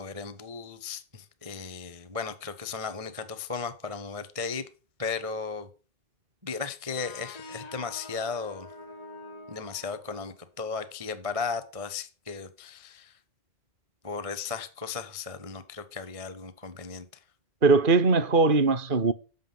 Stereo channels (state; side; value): late; left; 1.6 ms